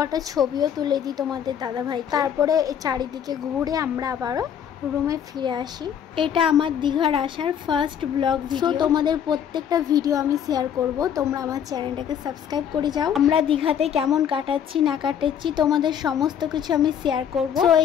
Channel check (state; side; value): quieter; right; 8.7 dB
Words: ছবিও তুলে দিই তোমাদের দাদাভাই। তারপরে চারিদিকে ঘুরে আমরা আবারও রুমে ফিরে আসি। এটা আমার দীঘার আসার ফার্স্ট ব্লগ ভিডিও। তোমাদের প্রত্যেকটা ভিডিও আমি শেয়ার করব, তোমরা আমার চ্যানেলটাকে সাবস্ক্রাইব করে যাও। আমরা দীঘাতে কেমন কাটাচ্ছি না কাটাচ্ছি তোমাদের সমস্ত কিছু আমি শেয়ার করব। তো